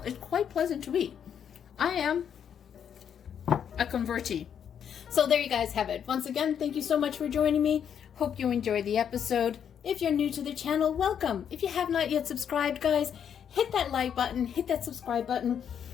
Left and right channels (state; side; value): quieter; right; 8.4 dB